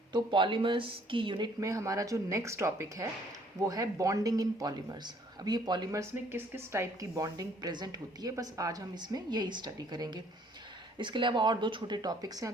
तो polymers की unit में हमारा जो नेक्स्ट टॉपिक है वो है बॉन्डिंग इन पॉलीमर्स। अब ये पॉलीमर्स में किस किस टाइप की बॉन्डिंग प्रेजेंट होती है, बस आज हम इसमें यही स्टडी करेंगे। इसके अलावा और दो छोटे टॉपिक्स हैं,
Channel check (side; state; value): both; normal; correlation 0.61